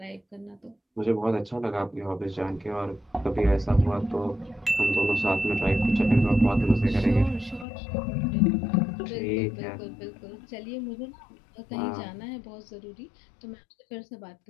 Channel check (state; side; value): drops out; right; at 7.7 s